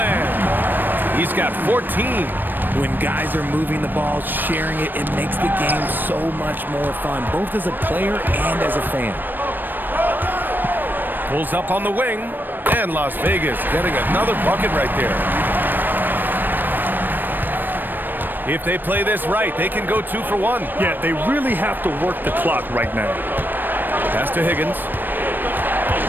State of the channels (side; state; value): left; late; 0.092 ms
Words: He's got 14. When guys are moving the ball, sharing it, it makes the game so much more fun, both as a player and as a fan. Pulls up on the wing, and Las Vegas getting another bucket right there. If they play this right, they can go 2 for 1. Yeah, they really have to work the clock right now. Pass to Higgins.